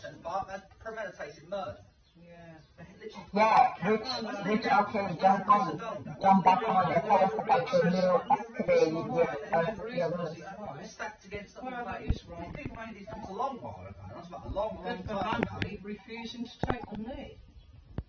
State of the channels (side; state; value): both; identical; correlation 1.00